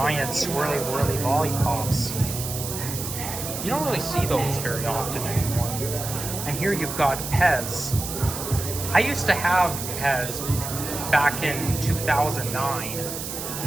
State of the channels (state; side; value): noise; right; hiss, 6 dB below the sound